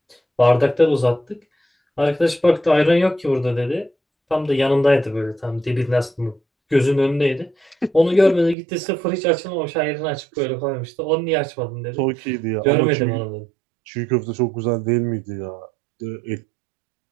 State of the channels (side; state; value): left; drops out; at 8.6 s